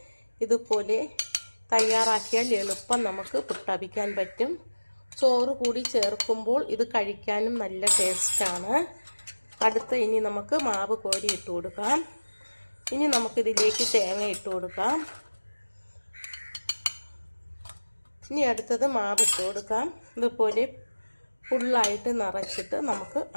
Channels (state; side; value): inverted; both; correlation -1.00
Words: ഇതുപോലെ തയ്യാറാക്കിയാൽ എളുപ്പം നമുക്ക് പുട്ടവിക്കാൻ പറ്റും. ചോറ് കൂടി ചേർക്കുമ്പോൾ ഇത് കഴിക്കാനും നല്ല ടേസ്റ്റാണ്. ഇനി നമുക്ക് മാവ് കോരി ഇട്ട് കൊടുക്കാം. ഇനി നമുക്കിതിലേക്ക് തേങ്ങ ഇട്ട് കൊടുക്കാം. ഇനി അടുത്തത് മാവ് ഇട്ട് കൊടുക്കാം. ഇതുപോലെ ഫുള്ളായിട്ട് നിറച്ചിട്ട് നമുക്ക്